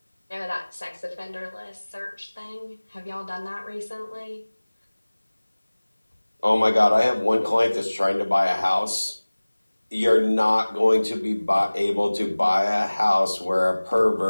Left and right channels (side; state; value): both; inverted; correlation -1.00